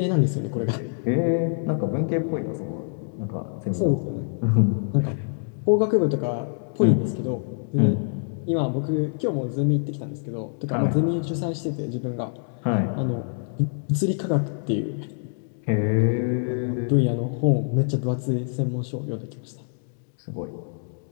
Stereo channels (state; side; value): silent; right; digital silence